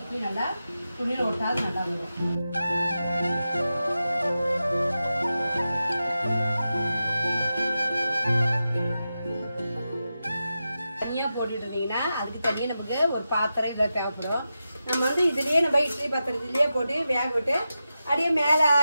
நல்லா துணியில ஒட்டாது நல்லா வரும். தனியா போட்டுட்டு இருந்தீங்கன்னா அதுக்கு தனியா நமக்கு ஒரு பாத்திரம் இதுல தேவைப்படும். நம்ம வந்து இதுலயே நம்ம இட்லி பாத்திரத்திலேயே போட்டு வேக விட்டு அப்படியே மேல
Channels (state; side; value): inverted; both; correlation -0.91